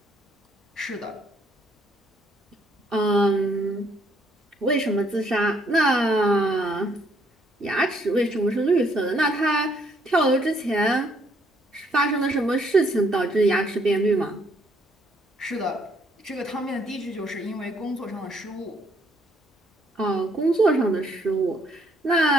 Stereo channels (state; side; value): normal; both; correlation 0.68